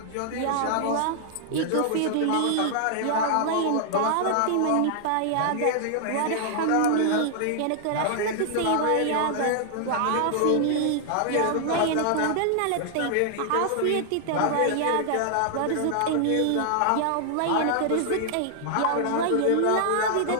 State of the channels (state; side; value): different; both; correlation 0.00